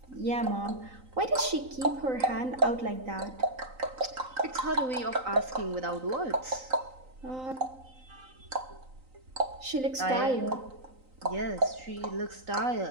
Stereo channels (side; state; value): left; late; 3.9 ms